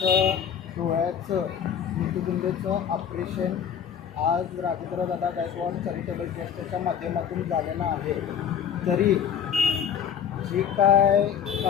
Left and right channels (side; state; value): right; quieter; 8.1 dB